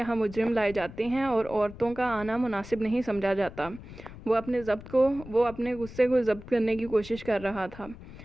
مجرم لائے جاتے ہیں اور عورتوں کا آنا مناسب نہیں سمجھا جاتا۔ وہ اپنے غصے کو ضبط کرنے کی کوشش کر رہا تھا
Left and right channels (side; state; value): left; noise; rumble, 15 dB below the sound